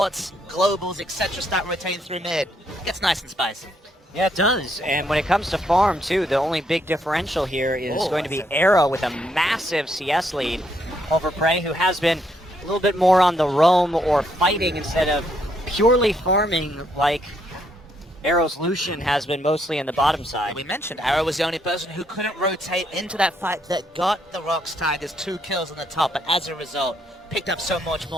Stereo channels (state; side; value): normal; both; correlation 0.73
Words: globals, etc. start rotating through mid, it gets nice and spicy. Yeah, it does. And when it comes to farm, too, the only big differential here is going to be Arrow with a massive CS lead over Prey, who has been a little bit more on the roam or fighting instead of purely farming like Arrow's Lucian has been mostly in the bottom side. We mentioned Arrow was the only person who couldn't rotate into that fight that got the ROX Tigers 2 kills on the top, but as a result, picked up so much